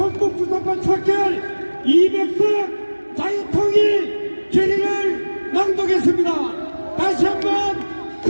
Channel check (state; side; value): inverted; both; correlation -1.00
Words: 척결 200석 자유통일 결의를 낭독했습니다. 다시 한번